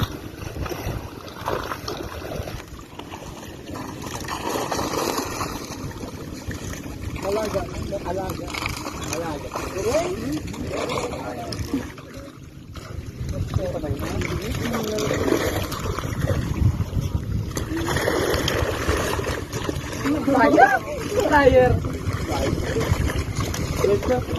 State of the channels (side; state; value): both; identical; correlation 1.00